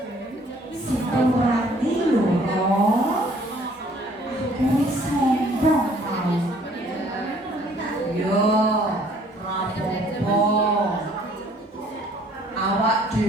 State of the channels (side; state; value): both; normal; correlation 0.59